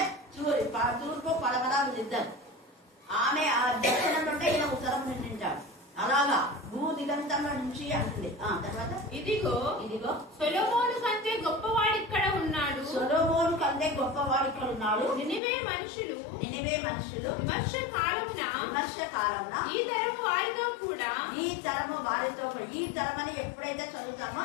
తూర్పు పడమరాలు ఇద్దరు. ఆమె ఆ దక్షిణం నుండి ఈయన ఉత్తరం నింటాడు. అలాగా భూ దిగంతంలో నుంచి అంటుంది. తర్వాత ఇదిగో సొలొమోను కంటే గొప్పవాడు ఇక్కడ ఉన్నాడు. నినివే మనుషులు విమర్శ కాలమున ఈ తరము వారితో కూడా ఈ తరమని ఎప్పుడైతే చదువుతామో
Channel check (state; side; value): drops out; right; at 15.4 s